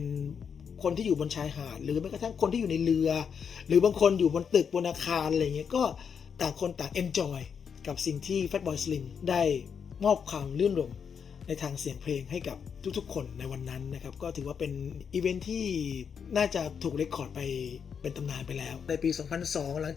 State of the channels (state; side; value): quieter; right; 6.9 dB